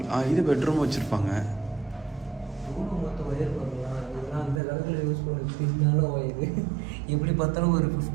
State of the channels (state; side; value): drops out; left; at 4.6 s